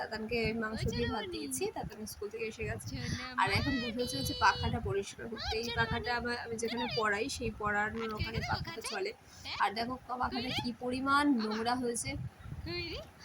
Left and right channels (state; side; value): identical; both; correlation 1.00